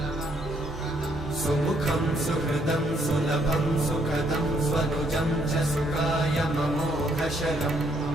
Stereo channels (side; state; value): both; normal; correlation 0.71